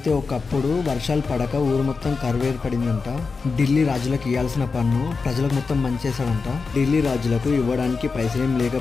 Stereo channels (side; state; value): right; quieter; 4.6 dB